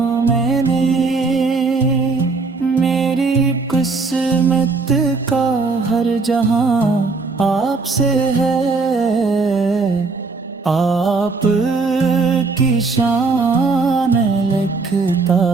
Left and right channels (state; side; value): quieter; left; 4.1 dB